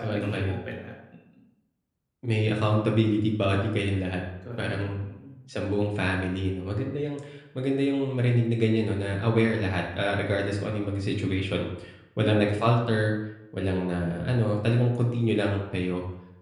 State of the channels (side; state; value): both; identical; correlation 1.00